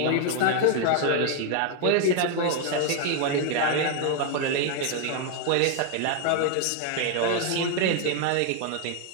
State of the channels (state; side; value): different; both; correlation 0.01